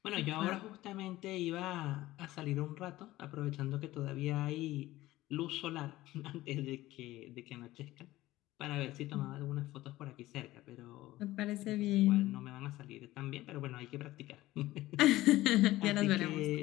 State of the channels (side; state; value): right; quieter; 16.8 dB